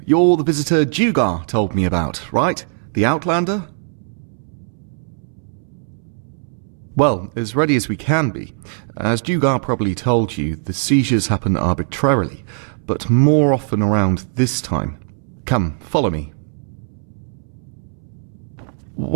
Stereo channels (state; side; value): silent; left; 66 dB below the other